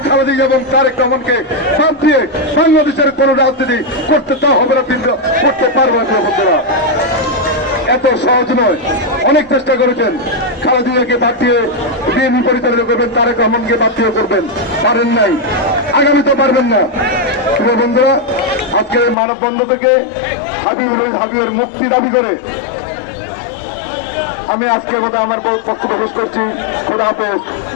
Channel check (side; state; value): right; drops out; at 19.2 s